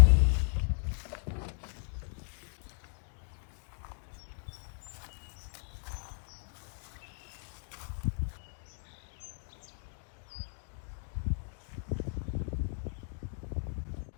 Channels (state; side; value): silent; right; 54 dB below the other